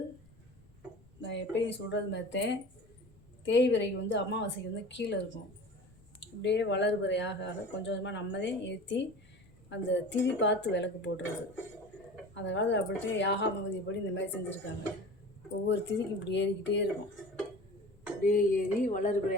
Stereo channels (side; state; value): left; noise; rumble, 27 dB below the sound